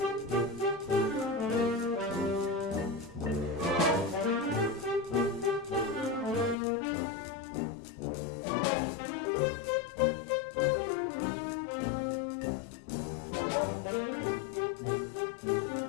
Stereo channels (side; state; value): right; drops out; at 6.6 s